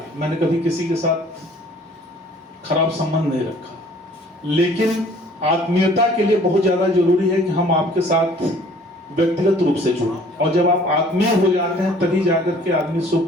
मैंने कभी किसी के साथ खराब संबंध नहीं रखा। लेकिन आत्मीयता के लिए बहुत ज्यादा जरूरी है कि हम आपके साथ व्यक्तिगत रूप से जुड़ें, और जब आप आत्मीय हो जाते हैं तभी जाकर के आदमी सुख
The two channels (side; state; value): both; normal; correlation 0.54